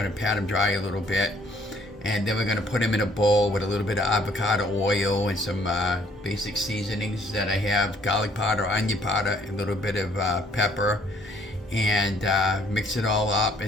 to pat them dry a little bit, and then we're going to put them in a bowl with a little bit of avocado oil and some basic seasonings that I have: garlic powder, onion powder, a little bit of pepper, and mix it all up.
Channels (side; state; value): both; normal; correlation 0.62